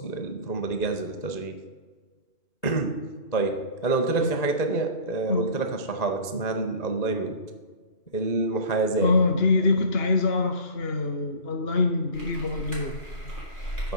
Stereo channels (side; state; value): right; late; 2.0 ms